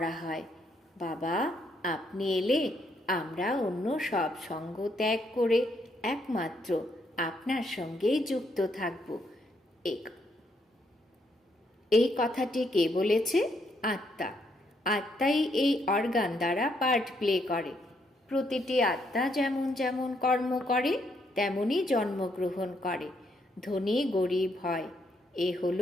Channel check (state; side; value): normal; both; correlation 0.74